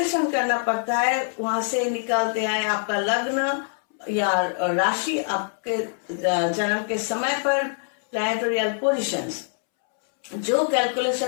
करना पड़ता है। वहां से निकालते आए आपका लग्न या राशि, आपके जन्म के समय पर प्लैनेटोरियल पोजीशंस, जो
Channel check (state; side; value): silent; right; 62 dB below the other